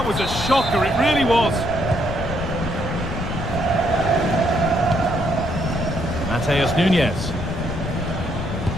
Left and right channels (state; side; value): noise; left; rumble, 6 dB below the sound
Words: was a shocker. It really was. Mateus Nunes.